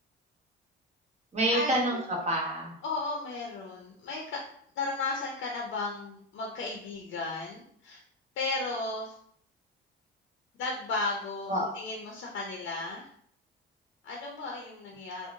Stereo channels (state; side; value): normal; both; correlation 0.08